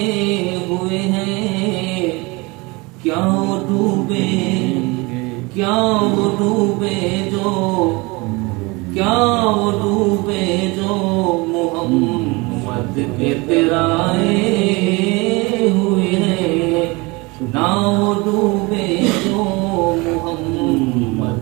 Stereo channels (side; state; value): left; quieter; 25.4 dB